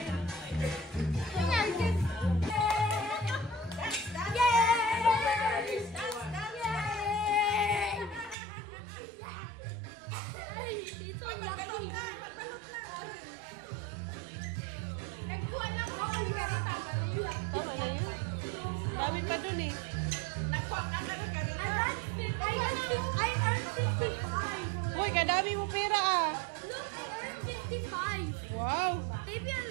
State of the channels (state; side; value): drops out; left; at 8.3 s